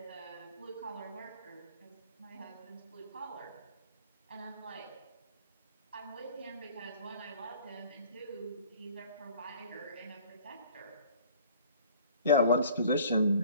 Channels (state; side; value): inverted; both; correlation -0.50